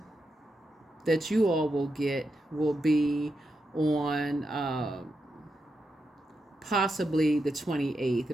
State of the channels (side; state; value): both; normal; correlation 0.86